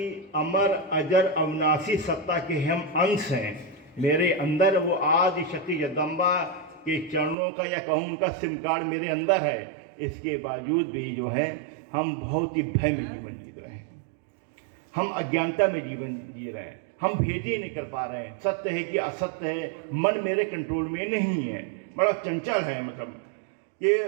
अमर अजर अविनाशी सत्ता के हम अंश हैं। मेरे अंदर वो आदि शक्ति जगदम्बा के चरणों का या कहूँ उनका सिम कार्ड मेरे अंदर है। इसके बावजूद भी जो है हम बहुत ही भय में जीवन जी रहे हैं, हम अज्ञानता में जीवन जी रहे हैं, हम भेद ही नहीं कर पा रहे हैं। सत्य है कि असत्य है, मन मेरे कंट्रोल में नहीं है, बड़ा चंचल है। मतलब ये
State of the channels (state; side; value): drops out; left; at 7.4 s